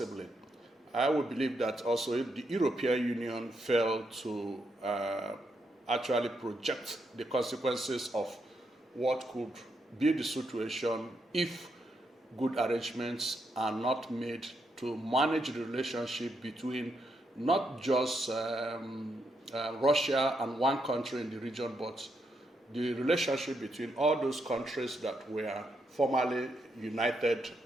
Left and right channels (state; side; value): normal; both; correlation 0.80